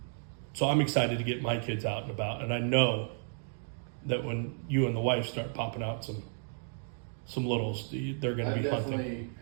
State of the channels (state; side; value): silent; left; 56 dB below the other